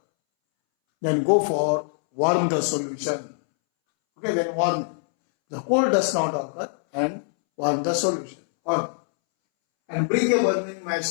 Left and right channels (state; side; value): silent; right; 63 dB below the other